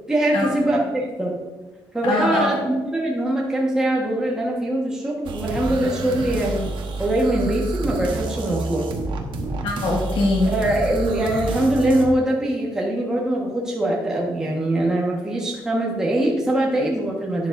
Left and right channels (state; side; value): normal; both; correlation 0.79